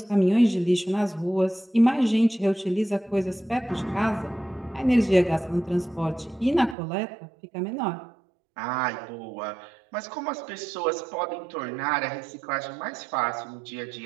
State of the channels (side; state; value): left; drops out; at 6.8 s